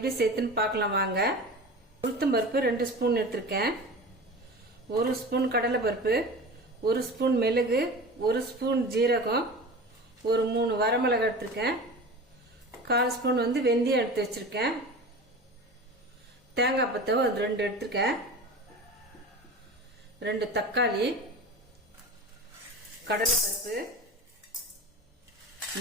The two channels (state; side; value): normal; both; correlation 0.33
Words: சேர்த்துன்னு பார்க்கலாம் வாங்க. உளுத்தம்பருப்பு 2 ஸ்பூன் எடுத்திருக்கேன். 1 ஸ்பூன் கடலை பருப்பு, 1 ஸ்பூன் மிளகு, 1 ஸ்பூன் ஜீரகம், ஒரு 3 வரமிளகாய் எடுத்திருக்கேன். 1/4 ஸ்பூன் வெந்தயம் எடுத்து வச்சிருக்கேன். தேங்காய் பத்தவை 2 எடுத்துருக்கேன். 2 தக்காளி, கடலைப்பருப்பு,